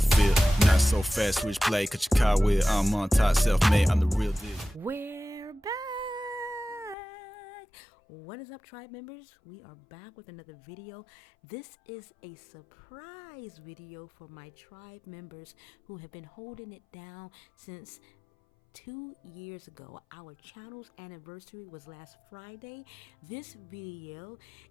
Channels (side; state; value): right; drops out; at 7.0 s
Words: Not so fast, switch play, cut your car with. I'm on top, self-made, I'm the real deal. We're back. What is up, tribe members? We are back with another video. This is a surprise video for my tribe members who have been holding it down since 2 years ago. Our channel's anniversary was last Friday. This video